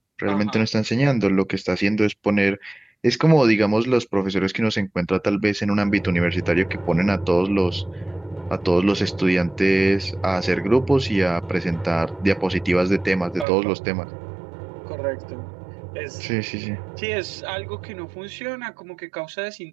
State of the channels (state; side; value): drops out; left; at 13.5 s